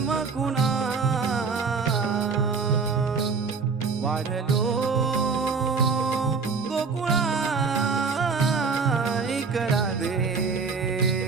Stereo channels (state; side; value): quieter; left; 4.9 dB